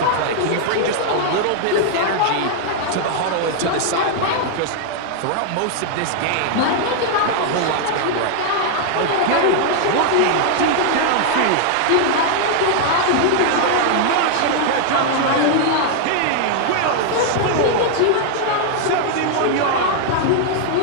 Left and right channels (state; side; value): different; both; correlation 0.00